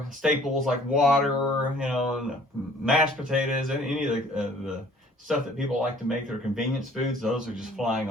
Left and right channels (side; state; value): both; normal; correlation 0.55